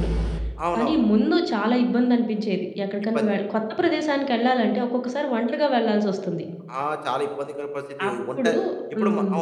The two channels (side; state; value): both; identical; correlation 1.00